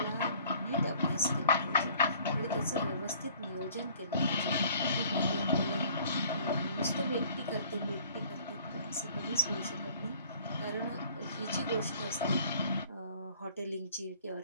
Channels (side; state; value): both; inverted; correlation -0.54